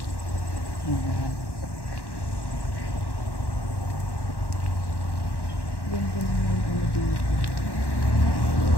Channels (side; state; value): right; late; 1.1 ms